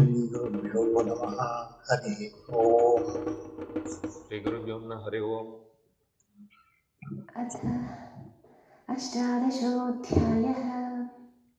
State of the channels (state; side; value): identical; both; correlation 1.00